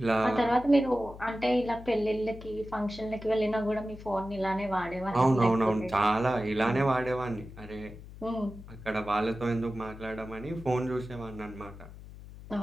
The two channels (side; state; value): left; noise; hum, 16 dB below the sound